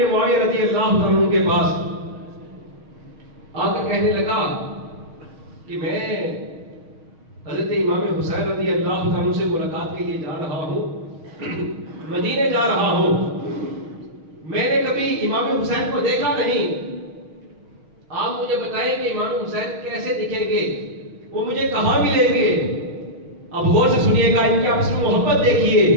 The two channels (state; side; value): late; left; 6.4 ms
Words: معاویہ رضی اللہ عنہ کے پاس، آ کر کہنے لگا کہ میں حضرت امام حسین رضی اللہ عنہ سے ملاقات کے لیے جا رہا ہوں، مدینے جا رہا ہوں، میں نے کبھی امام حسین کو دیکھا نہیں، آپ مجھے بتائیں کہ امام حسین کیسے دکھیں گے، وہ مجھے کہاں ملیں گے؟ اب غور سے سنیے گا، ان کے آپس میں محبت دیکھیے۔